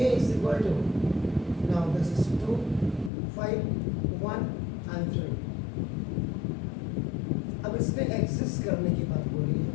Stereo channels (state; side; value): drops out; right; at 3.1 s